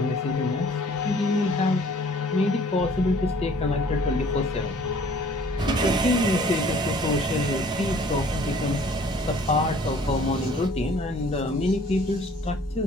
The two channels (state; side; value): normal; both; correlation 0.54